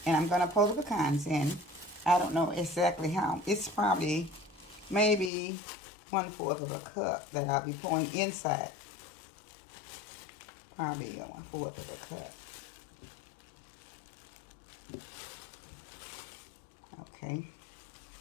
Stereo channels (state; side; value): drops out; right; at 5.3 s